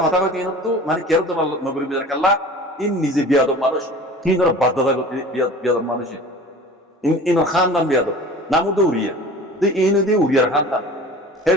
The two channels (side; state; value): both; normal; correlation 0.41